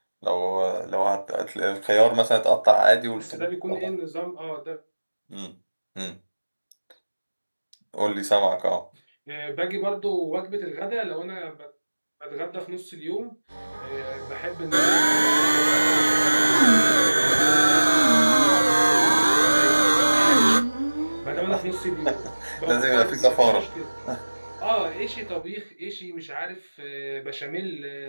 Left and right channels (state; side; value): inverted; both; correlation -1.00